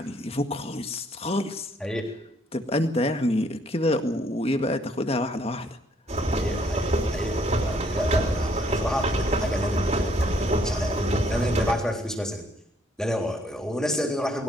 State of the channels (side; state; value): both; normal; correlation 0.66